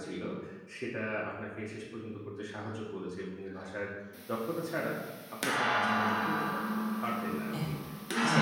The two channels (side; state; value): both; identical; correlation 1.00